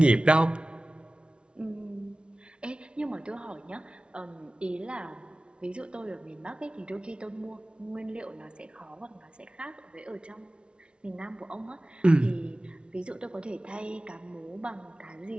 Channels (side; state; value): left; late; 0.057 ms